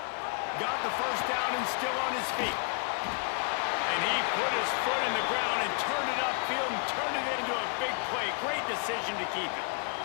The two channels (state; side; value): quieter; right; 38.4 dB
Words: Got the first down and still on his feet. And he put his foot in the ground and turned it upfield and turned it into a big play. Great decision to keep it.